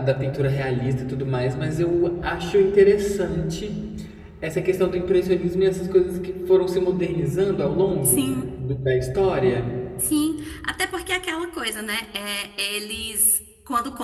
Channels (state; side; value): identical; both; correlation 1.00